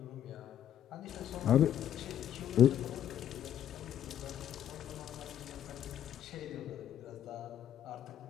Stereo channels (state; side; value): quieter; right; 10.5 dB